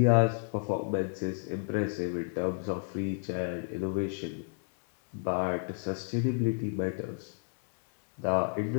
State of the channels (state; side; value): silent; right; digital silence